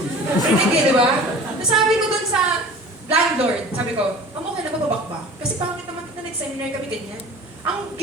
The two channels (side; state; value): both; normal; correlation 0.42